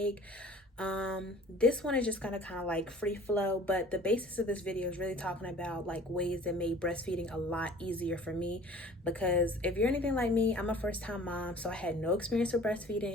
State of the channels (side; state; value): both; normal; correlation 0.48